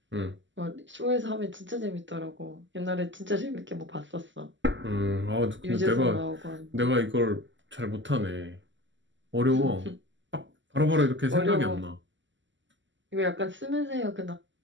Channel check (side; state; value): left; late; 0.54 ms